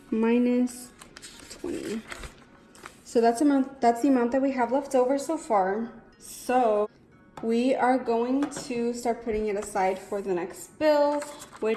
minus 20. So that's the amount that we have left over so far. So we are going to start putting it aside for the next bill,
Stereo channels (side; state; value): both; identical; correlation 1.00